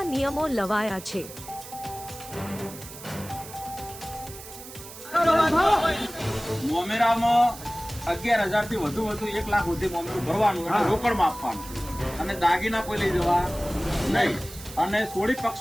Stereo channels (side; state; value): right; noise; hiss, 14 dB below the sound